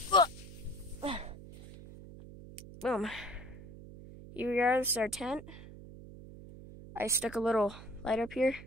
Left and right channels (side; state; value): right; noise; hum, 15 dB below the sound